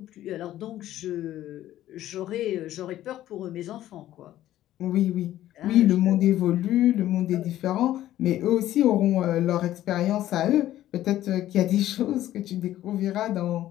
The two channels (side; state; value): right; quieter; 13.4 dB